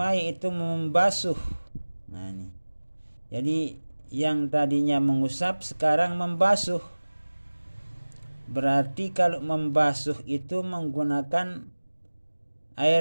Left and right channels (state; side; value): inverted; both; correlation -1.00